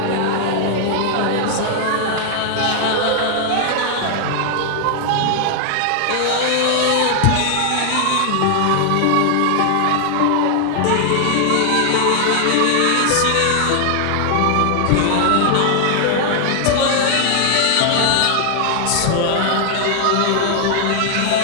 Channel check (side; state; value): both; different; correlation 0.00